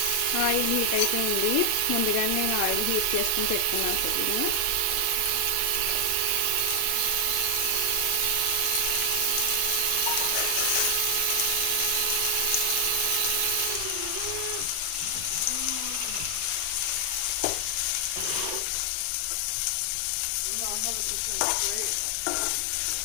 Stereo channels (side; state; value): both; different; correlation 0.00